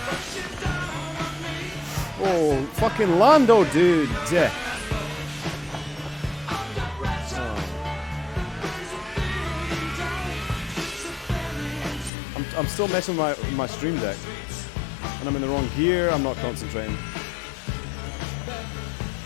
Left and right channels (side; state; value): right; drops out; at 12.1 s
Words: Oh, fucking Lando, dude. I'm still messing with my stream deck. And I'm in the wrong gear, I'm not concentrating.